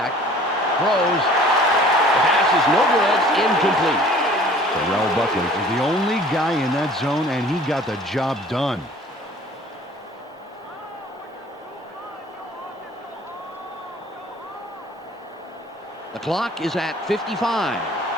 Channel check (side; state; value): both; normal; correlation 0.50